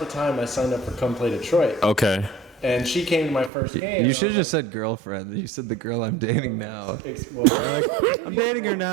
time I signed up for Come Play Detroit. okay. and she came to my first game. You should have just said girlfriend. You said the girl I'm dating now. I'm dating her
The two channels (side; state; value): left; drops out; at 3.5 s